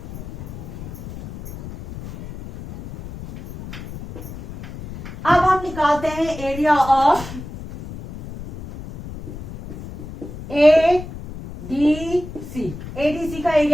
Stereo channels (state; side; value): noise; left; rumble, 12 dB below the sound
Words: अब हम निकालते हैं एरिया ऑफ ADC। ADC का